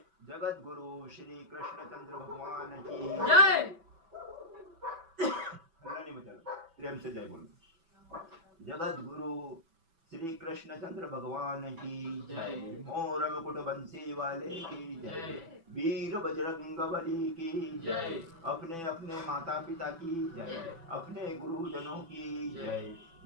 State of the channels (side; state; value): left; late; 6.0 ms